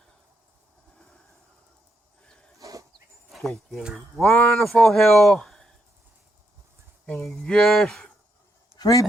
take your wonderful hill, and you just sweep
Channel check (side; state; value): both; normal; correlation 0.79